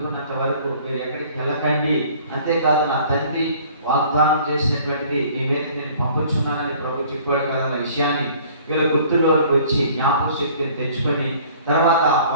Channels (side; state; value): both; inverted; correlation -0.52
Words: వరకు మీరు ఎక్కడికి వెళ్ళకండి, అంతేకాదు నా తండ్రి వాగ్దానం చేసినటువంటిది మీ మీద నేను పంపుచున్నానని ప్రభు చెప్పాడు కదా అన్న విషయాన్ని వీళ్ళ గుర్తుల్లోకి వచ్చి జ్ఞాపక శక్తిని తెచ్చుకొని తర్వాత